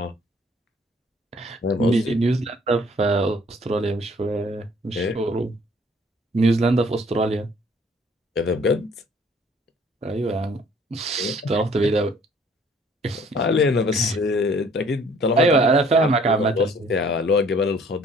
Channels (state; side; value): normal; both; correlation 0.58